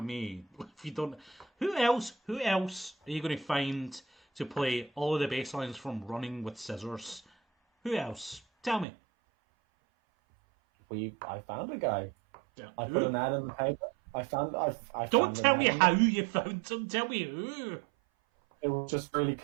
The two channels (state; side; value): drops out; left; at 8.8 s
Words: me. If you don't, who else are you going to find to play all of the bass lines from Running with Scissors? Who else? Tell me. I found a guy. Yeah. I put an ad in the paper. Don't tell me how you found him. Tell me who. It was just really